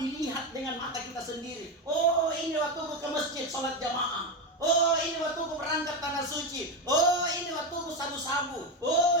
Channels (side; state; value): both; normal; correlation 0.14